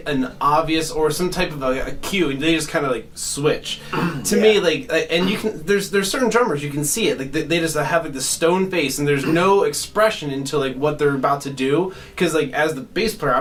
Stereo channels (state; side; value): identical; both; correlation 1.00